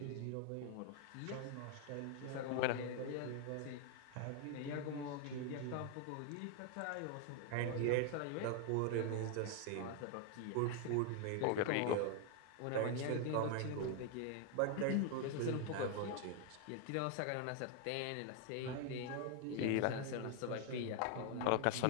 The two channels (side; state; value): both; different; correlation 0.00